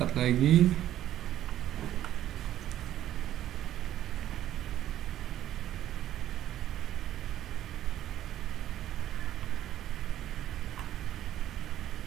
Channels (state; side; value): quieter; left; 12.3 dB